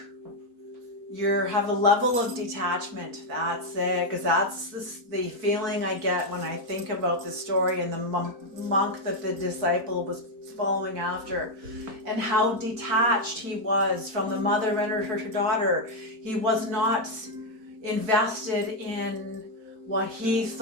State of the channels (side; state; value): left; late; 4.5 ms